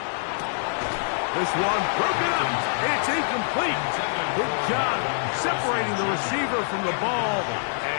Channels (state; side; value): silent; right; digital silence